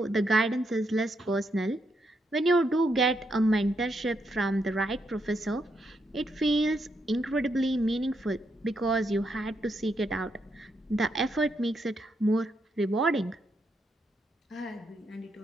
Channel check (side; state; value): both; normal; correlation 0.79